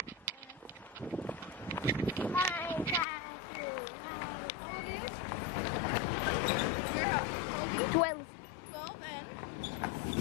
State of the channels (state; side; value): drops out; right; at 3.1 s